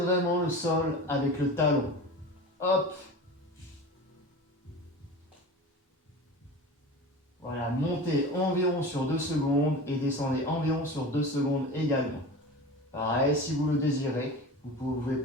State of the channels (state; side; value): normal; both; correlation 0.33